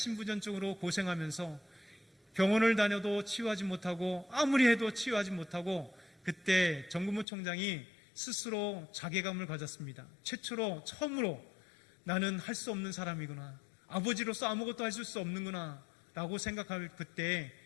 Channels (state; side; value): drops out; right; at 7.2 s